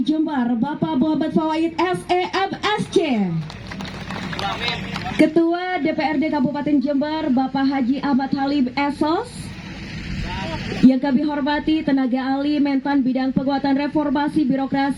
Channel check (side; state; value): both; identical; correlation 1.00